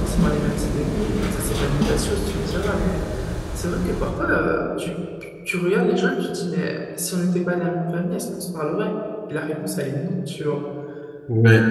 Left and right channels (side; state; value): both; identical; correlation 1.00